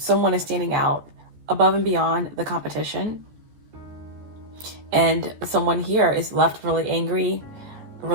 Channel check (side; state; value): left; late; 14 ms